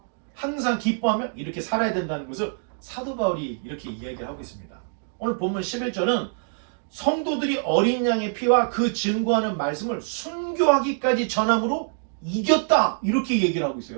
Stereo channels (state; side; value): silent; left; digital silence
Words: 항상 기뻐하며 이렇게 살아야 된다는 것을 사도 바울이 이렇게 이야기를 하고 있습니다. 오늘 본문 11절은 성도들이 어린 양의 피와 그 증거하는 말씀을 순교하기까지 전함으로 이겼다, 이렇게 얘기를 하고